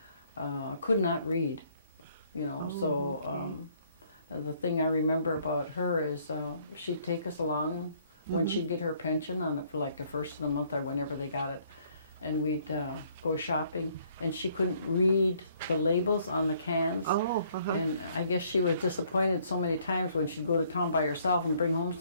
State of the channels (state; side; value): inverted; both; correlation -0.64